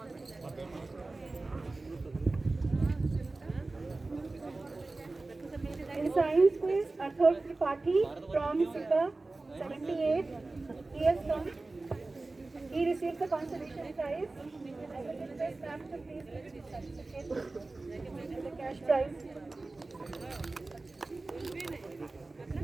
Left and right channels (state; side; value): quieter; left; 3.3 dB